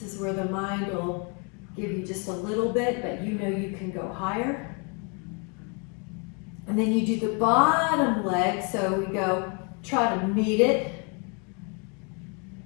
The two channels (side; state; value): right; quieter; 35.3 dB